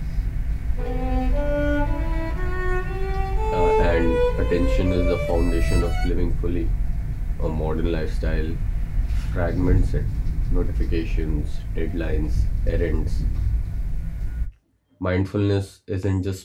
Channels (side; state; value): both; identical; correlation 1.00